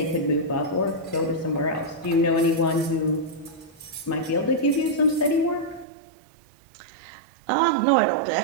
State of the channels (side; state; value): left; drops out; at 5.9 s